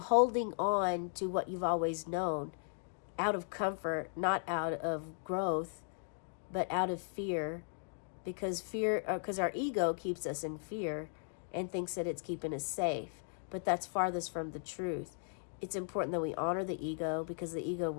holding on to what you've always known, out of comfort, not out of growth, but out of fear, because our ego keeps us in fear and thinks that it's keeping us safe, but that's farthest from the truth. It's important that we honor the ego, because the ego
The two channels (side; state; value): right; silent; digital silence